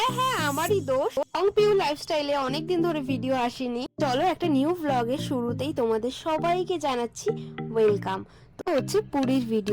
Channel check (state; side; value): identical; both; correlation 1.00